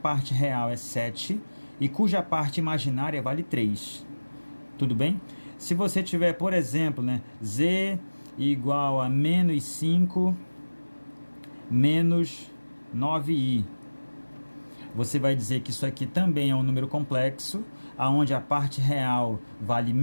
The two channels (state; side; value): inverted; both; correlation -1.00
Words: real é 7 e cuja parte imaginária vale 3. Tudo bem? Se você tiver, por exemplo, né, z igual a menos 5 menos 9i, você vai dizer que isso aqui também é um número complexo, onde a parte real vale